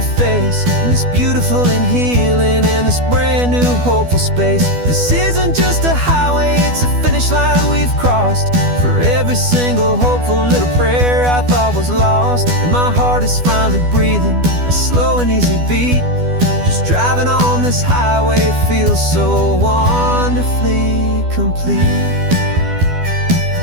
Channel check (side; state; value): left; late; 12 ms